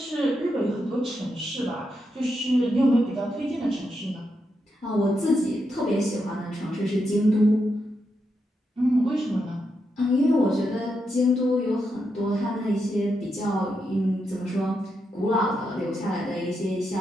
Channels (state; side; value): normal; both; correlation 0.84